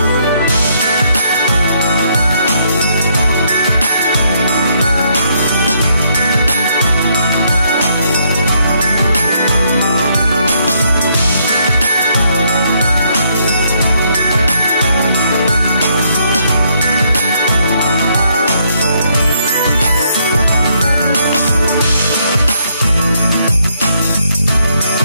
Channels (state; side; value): inverted; both; correlation -0.72